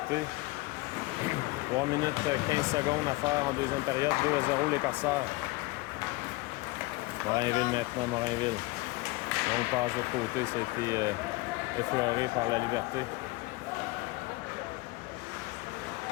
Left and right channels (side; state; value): right; quieter; 22.1 dB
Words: 3 minutes 15 secondes à faire en deuxième période. 2-0 les Corsaires. Morinville maintenant, Morinville. Donc passe de l'autre côté, ça a été effleuré par la Liberté.